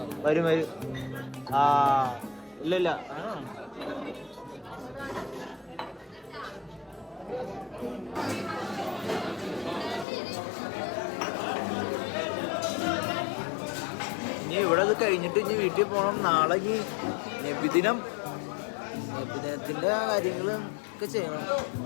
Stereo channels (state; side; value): drops out; right; at 10.1 s